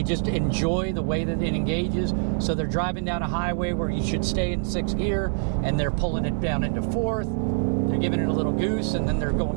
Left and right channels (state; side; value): silent; left; 62 dB below the other